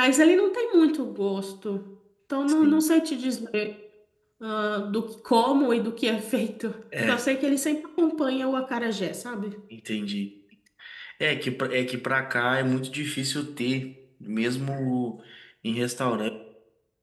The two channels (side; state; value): both; identical; correlation 1.00